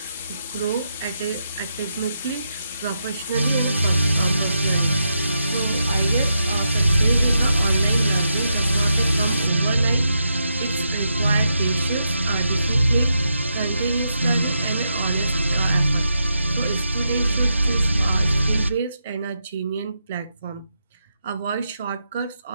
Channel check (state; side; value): inverted; both; correlation -0.84